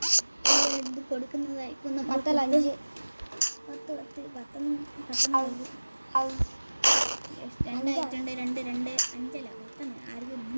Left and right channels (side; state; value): both; inverted; correlation -1.00